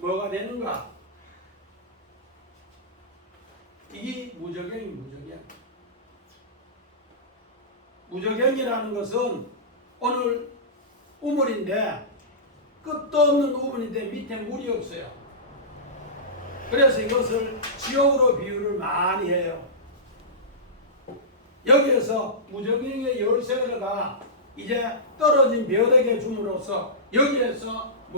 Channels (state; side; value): normal; both; correlation -0.18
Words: 되는가? 이게 무적경이라는 것은 오늘 우물인데 끝도 없는 우물인데 밑에 물이 없어요. 그래서 이것을 지옥으로 비유를 많이 해요. 여기에서 무적경의 열쇠가 이제 떨어진 벼락에 줌으로써 여기에서